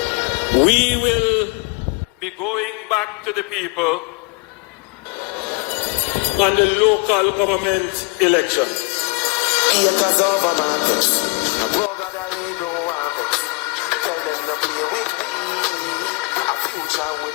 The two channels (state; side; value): quieter; right; 26.4 dB